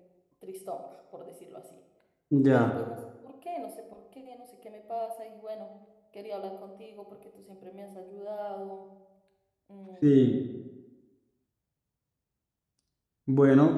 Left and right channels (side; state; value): both; identical; correlation 1.00